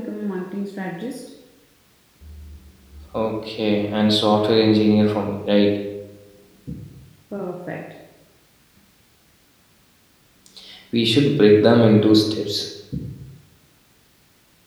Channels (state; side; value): identical; both; correlation 1.00